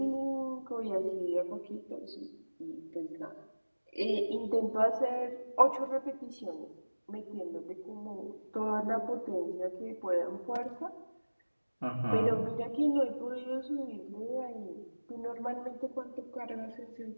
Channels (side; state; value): both; inverted; correlation -1.00